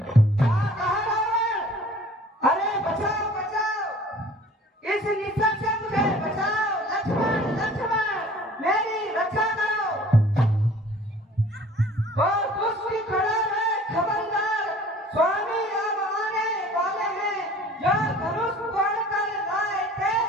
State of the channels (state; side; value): normal; both; correlation 0.49